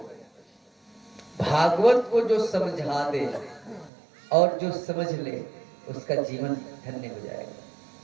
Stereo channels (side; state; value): left; drops out; at 3.9 s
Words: भागवत को जो समझा दे और जो समझ ले, उसका जीवन धन्य हो जाएगा।